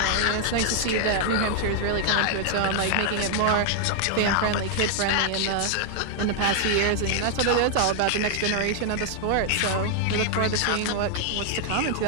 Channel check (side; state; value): both; different; correlation 0.00